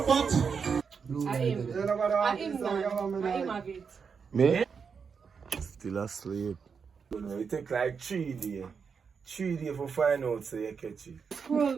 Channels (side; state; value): left; quieter; 6.0 dB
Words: pot. I have it. Me? Still asleep. It take like 3 days. 3 days for find out so you catch it.